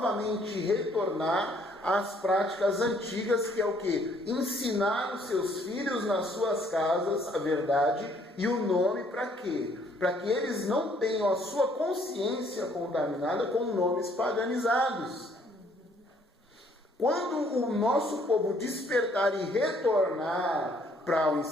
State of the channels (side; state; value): both; normal; correlation 0.64